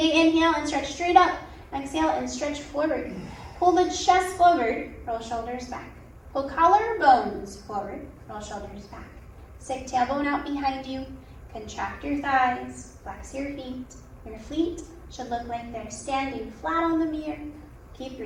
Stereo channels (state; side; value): identical; both; correlation 1.00